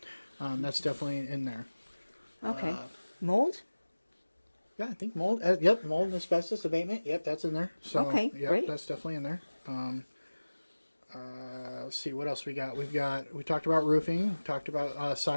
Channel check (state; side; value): inverted; both; correlation -1.00